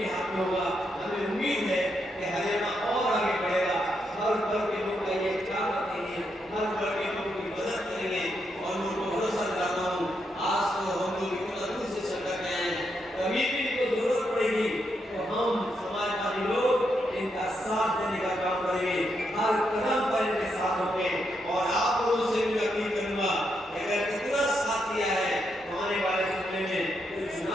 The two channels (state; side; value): normal; both; correlation 0.81